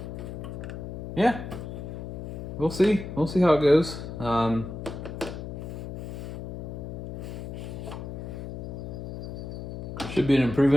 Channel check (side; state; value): left; noise; hum, 8 dB below the sound